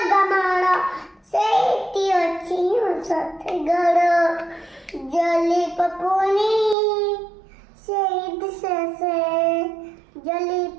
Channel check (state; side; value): drops out; left; at 6.8 s